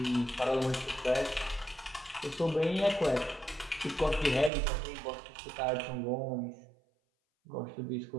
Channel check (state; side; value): drops out; left; at 4.5 s